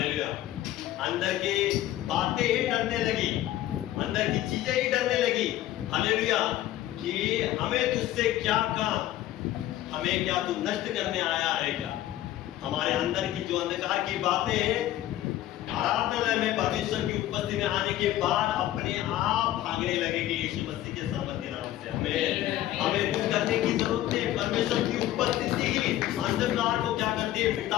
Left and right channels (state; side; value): quieter; right; 13.9 dB